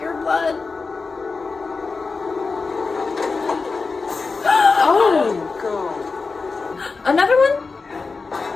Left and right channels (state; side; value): quieter; right; 4.3 dB